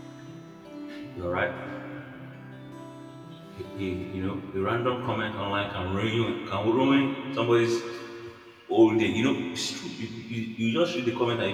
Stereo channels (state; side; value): identical; both; correlation 1.00